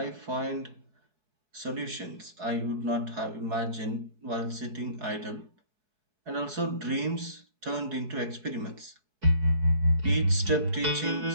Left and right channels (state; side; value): late; left; 4.7 ms